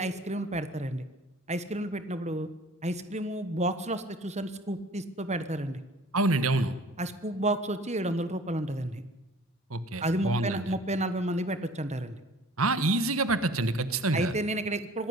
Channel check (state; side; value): normal; both; correlation 0.47